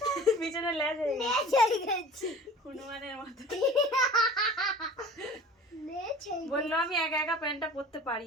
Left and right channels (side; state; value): both; normal; correlation 0.43